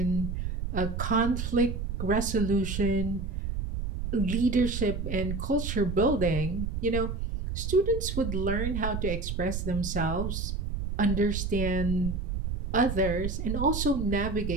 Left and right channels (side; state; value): right; noise; rumble, 3 dB below the sound